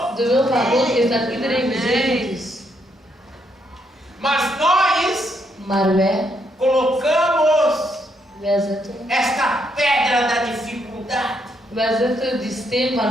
De wil van God is dat iedereen gezegend is. Mas nós Maar wij zetten esta pedra da dificuldade. Wij zetten die steen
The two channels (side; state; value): both; normal; correlation 0.76